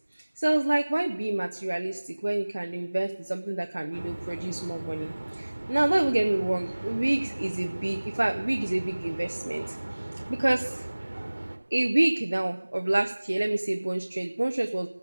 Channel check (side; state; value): both; inverted; correlation -1.00